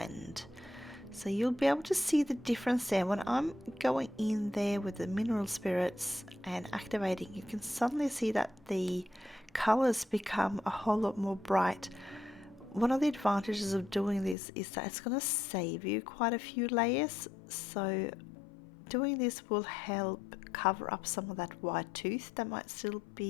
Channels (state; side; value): drops out; right; at 14.4 s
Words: So you'll be able to see the difference there. When I'm going in there with the mineral spirits and activating, you can suddenly see that the colors become a whole lot more bright. One of the advantages of doing this is that it's going to save you quite a few layers. So doing this will help cover up some of that white tooth that might still